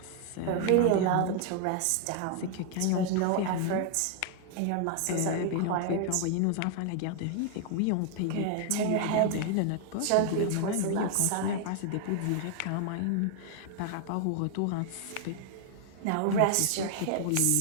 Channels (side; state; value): both; different; correlation 0.00